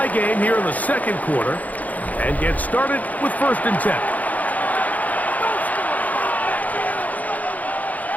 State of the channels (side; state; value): right; late; 0.077 ms